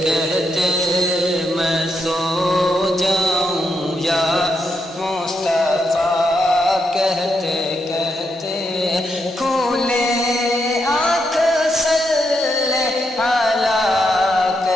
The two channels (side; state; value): both; normal; correlation 0.81